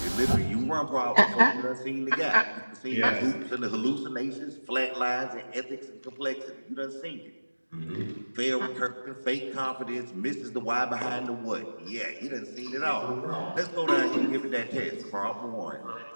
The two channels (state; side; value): inverted; both; correlation -1.00